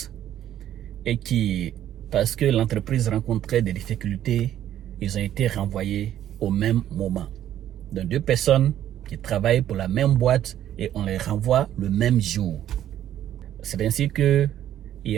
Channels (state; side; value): quieter; left; 11.5 dB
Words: et qui, parce que l'entreprise rencontrait des difficultés, ils ont été renvoyés au même moment. Donc deux personnes qui travaillent pour la même boîte et on les renvoie le même jour. C'est ainsi que il